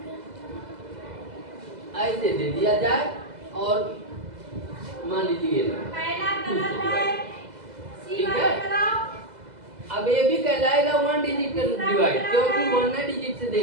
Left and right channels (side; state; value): left; late; 2.0 ms